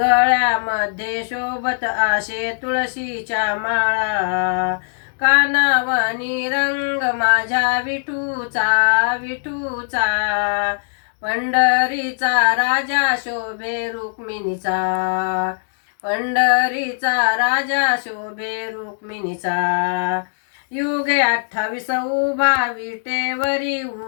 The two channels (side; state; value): right; silent; digital silence